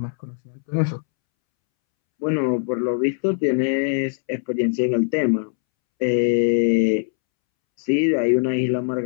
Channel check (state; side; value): silent; right; 65 dB below the other